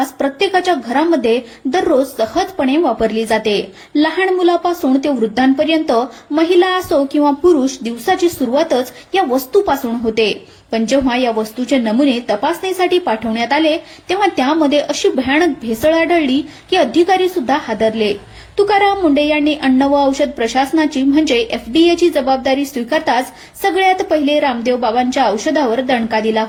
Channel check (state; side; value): identical; both; correlation 1.00